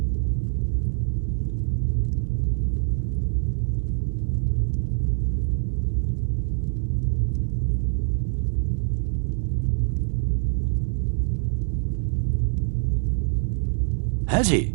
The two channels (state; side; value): silent; left; 62 dB below the other